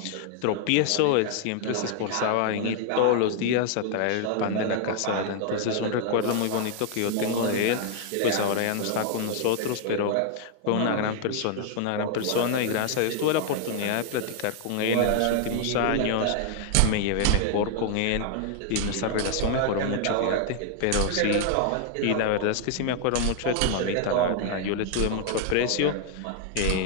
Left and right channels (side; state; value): both; different; correlation 0.00